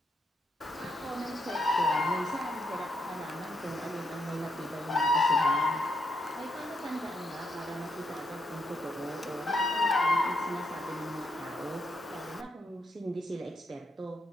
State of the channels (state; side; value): normal; both; correlation 0.78